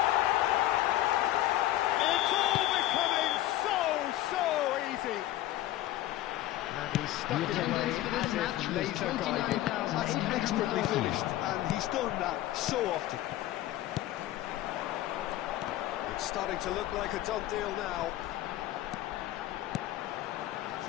It's all becoming so easy. And he's stuck it away as if laser guided. That's expertly finished, and he He's done that so often. It's starting to look like a done deal now.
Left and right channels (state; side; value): quieter; right; 14.8 dB